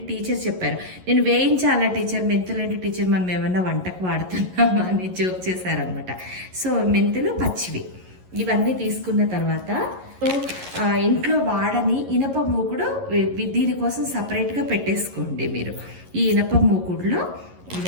టీచర్ చెప్పారు. నేను వేయించాలా టీచర్, మెంతులంటే టీచర్ మనం ఏమన్నా వంటకు వాడుతున్నామా అని జోక్ చేశారనమాట. సో మెంతులు పచ్చివి ఇవన్నీ తీసుకున్న తర్వాత ఇంట్లో వాడని ఇనప మూకుడు దీనికోసం సపరేట్గా పెట్టేసుకోండి మీరు. ఈ ఇనప మూకుడులో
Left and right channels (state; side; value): late; left; 11 ms